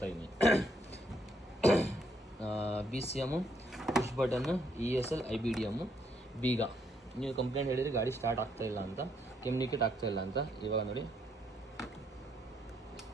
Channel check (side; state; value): both; normal; correlation 0.73